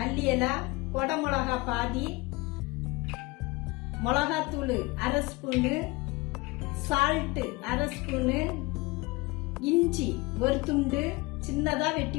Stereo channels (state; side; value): quieter; right; 23.1 dB